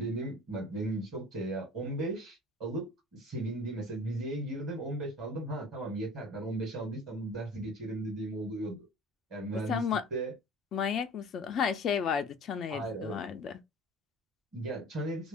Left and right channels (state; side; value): normal; both; correlation 0.43